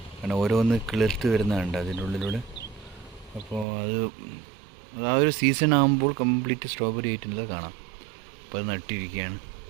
കാരണം ഓരോന്ന് കിളിർത്ത് വരുന്നതുണ്ട് അതിൻ്റെ ഉള്ളിലൂടെ. അപ്പോൾ അത് ആ ഒരു സീസൺ ആകുമ്പോൾ കംപ്ലീറ്റ് സ്ട്രോബെറി ആയിട്ടുള്ളത് കാണാം. അപ്പോൾ അത് നട്ടിരിക്കുകയാണ്.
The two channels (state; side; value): drops out; left; at 3.7 s